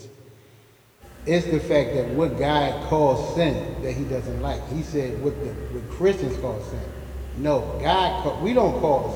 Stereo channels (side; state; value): both; identical; correlation 1.00